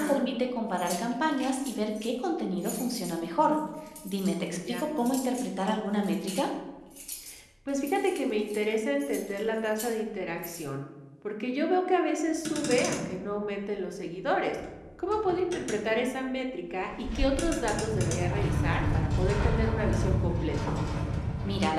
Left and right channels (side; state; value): both; identical; correlation 1.00